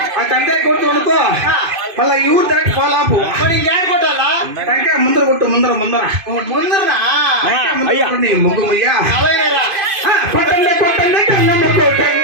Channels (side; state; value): left; late; 2.5 ms